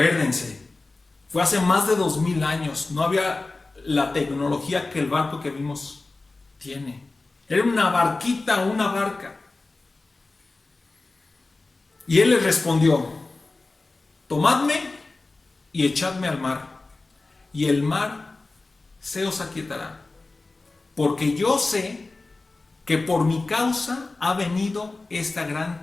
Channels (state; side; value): quieter; right; 3.4 dB